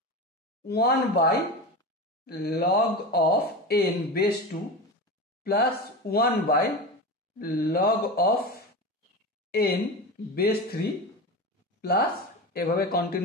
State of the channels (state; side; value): normal; both; correlation 0.25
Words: 1/log of n base 2 plus 1/log of n base 3 plus এভাবে